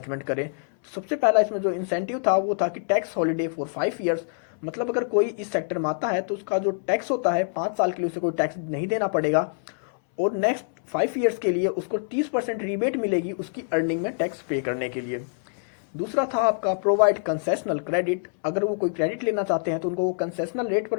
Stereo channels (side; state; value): right; silent; 61 dB below the other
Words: करें। तो सबसे पहला इसमें जो इंसेंटिव था वो था कि टैक्स हॉलीडे फॉर 5 ईयर्स। मतलब अगर कोई इस सेक्टर में आता है तो उसका जो टैक्स होता है 5 साल के लिए उसे कोई टैक्स नहीं देना पड़ेगा, और नेक्स्ट 5 ईयर्स के लिए उसको 30% रिबेट मिलेगी उसकी अर्निंग में टैक्स पे करने के लिए। दूसरा था आपका प्रोवाइड कंसेशनल क्रेडिट, अगर वो कोई क्रेडिट लेना चाहते हैं तो उनको वो कंसेशनल रेट